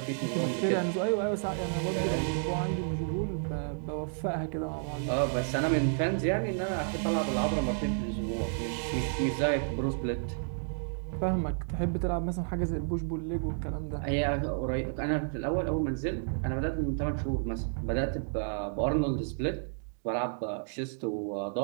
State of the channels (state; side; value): silent; left; digital silence